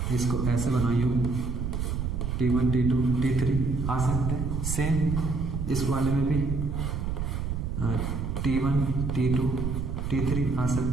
इसको ऐसे बनाइए, T1 T2 T3 आ सकते हैं। सेम इस वाले में भी T1 T2 T3 आ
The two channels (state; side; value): noise; right; rumble, 2 dB below the sound